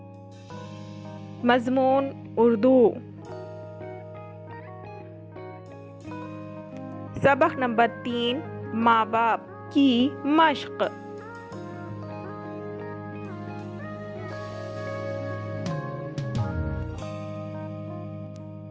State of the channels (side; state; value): both; identical; correlation 1.00